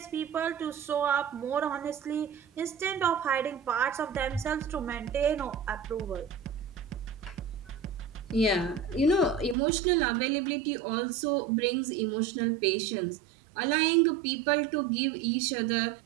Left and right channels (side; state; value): left; drops out; at 9.6 s